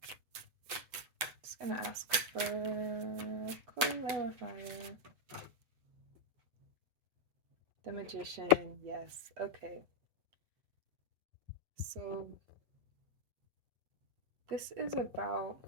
Just gonna ask for a clarifier. The Magician, yes. Okay. So this is about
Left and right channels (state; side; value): late; left; 7.9 ms